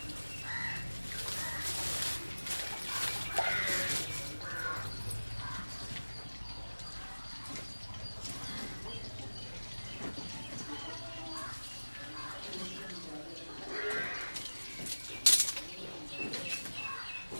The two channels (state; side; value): inverted; both; correlation -1.00